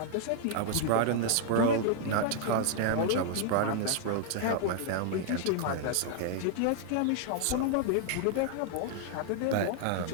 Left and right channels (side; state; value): both; different; correlation 0.00